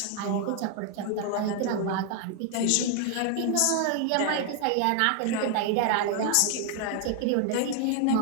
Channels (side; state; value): both; different; correlation 0.00